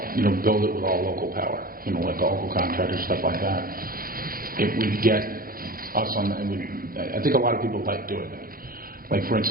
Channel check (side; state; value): left; late; 0.42 ms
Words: it with all local power, like local contractors, stuff like that, it would get us on, I think a lot of people like doing that. Like, for